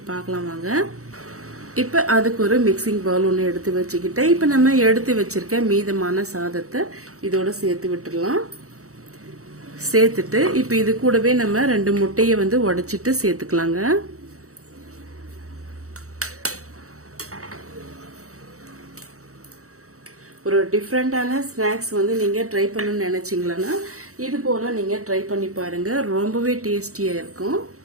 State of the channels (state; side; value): late; left; 0.65 ms